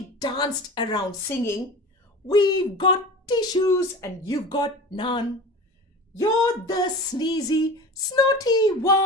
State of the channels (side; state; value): both; normal; correlation 0.35